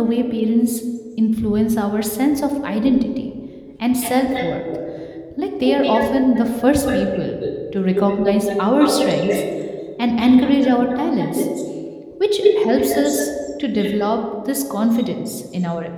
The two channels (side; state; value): both; identical; correlation 1.00